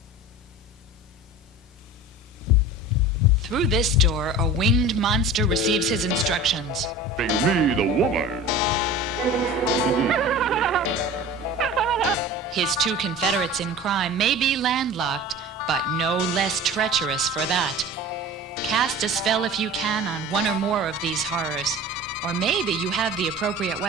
Through this door, a winged monster receives his instructions. Bring me the woman. His two confederates in crime may be landlocked, but no less treacherous for that. Cast a spell if you can on one or more of these horrors, or maybe you have the appropriate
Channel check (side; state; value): both; normal; correlation 0.38